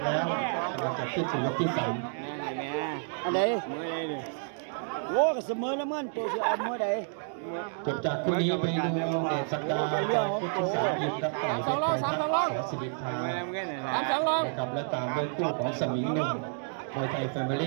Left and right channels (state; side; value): silent; left; 58 dB below the other